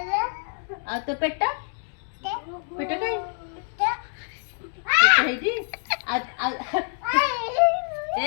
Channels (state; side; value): silent; right; 61 dB below the other